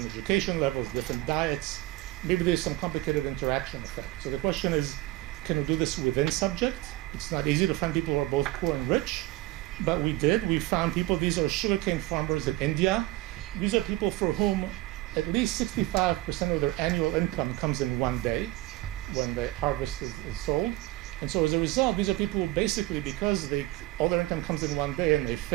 education levels, different diets. Maybe there's some complicated interaction effect. So the question is, can we do this within subject? It's not easy to find people who are both poor and rich, but we did. We found people, these are sugarcane farmers in India. These are people for whom at least 65% of their annual income comes in one day when the harvest is sold. And so as a result, these are people who basically, because all their income comes in one day and they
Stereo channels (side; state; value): left; quieter; 18.2 dB